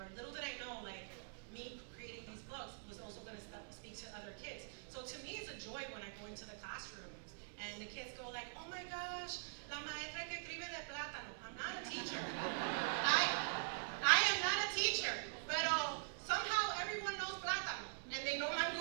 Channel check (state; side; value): silent; left; digital silence